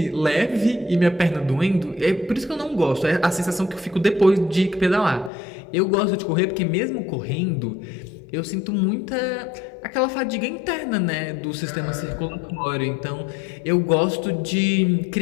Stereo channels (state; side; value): drops out; right; at 5.3 s